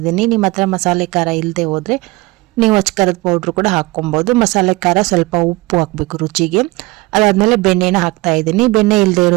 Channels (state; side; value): quieter; left; 21.9 dB